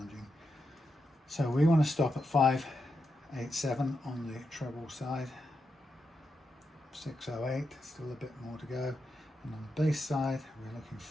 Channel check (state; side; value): normal; both; correlation 0.86